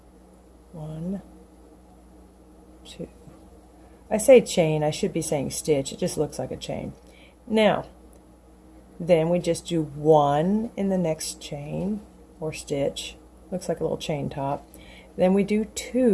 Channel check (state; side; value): identical; both; correlation 1.00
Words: 1, 2. I say chain, I should be saying stitch, it just looks like a chain. Now, then we just do 1 in the next chain, or stitch, looks like a little chain top. Then we do